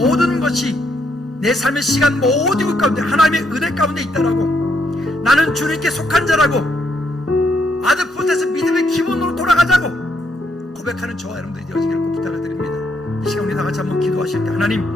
것이 내 삶의 시간 모든 것 가운데 하나님의 은혜 가운데 있다라고, 나는 주님께 속한 자라고, 아드포트에서 믿음의 기본으로 돌아가자고 고백하는 저와 여러분들이 되어지기를 꼭 부탁을 드립니다. 이 시간 우리 다 같이 한번 기도하실 때,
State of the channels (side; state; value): both; normal; correlation 0.75